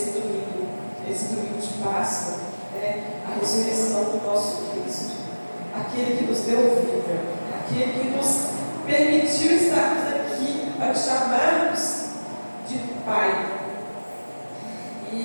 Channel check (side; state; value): both; inverted; correlation -1.00